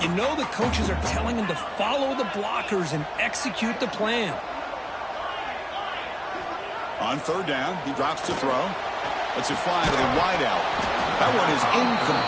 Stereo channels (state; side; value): identical; both; correlation 1.00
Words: you know the coaches are telling him to follow the blockers and execute the plan. On third down, he drops to throw. Lets it fly to the wideout. That one is